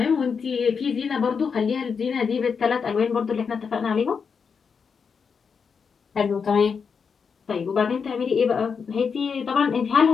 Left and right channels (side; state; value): right; quieter; 6.0 dB